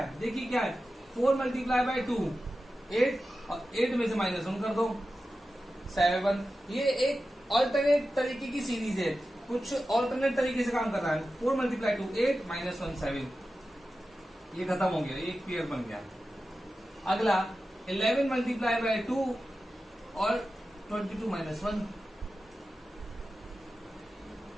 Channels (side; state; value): both; normal; correlation 0.93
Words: देखिए क्या है, 4 मल्टीप्लाई बाय 2 8, और 8 में से -1 कर दो 7। ये एक ऑल्टरनेट तरीके की सीरीज है, कुछ ऑल्टरनेट तरीके से काम कर रहा है। 4 मल्टीप्लाई 2 8 -1 7, ये खत्म हो गया, एक क्लियर बन गया। अगला 11 मल्टीप्लाई बाय 2 और 22 -1